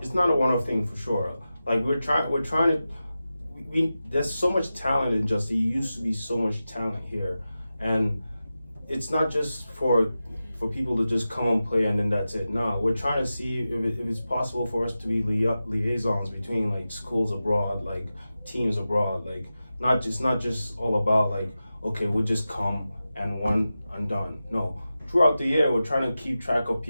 thing for sure. Like we're trying to. There's so much talent in Just. There used to be so much talent here, and it's not just for people to just come and play and then that's it. No, we're trying to see if it's possible for us to be liaisons between like schools abroad, like teams abroad. Like not just all about like, okay, we'll just come and one and done. No, throughout the year we're trying to keep track of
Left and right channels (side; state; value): both; inverted; correlation -0.93